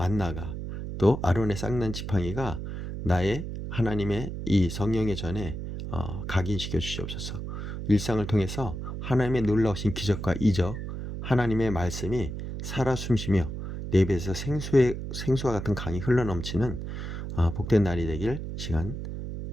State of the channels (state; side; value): noise; right; hum, 6 dB below the sound